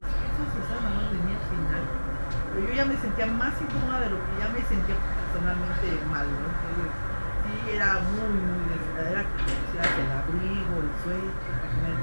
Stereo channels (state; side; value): inverted; both; correlation -1.00